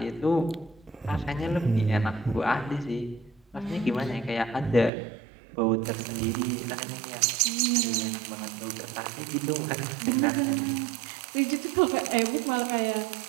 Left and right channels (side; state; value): left; drops out; at 4.9 s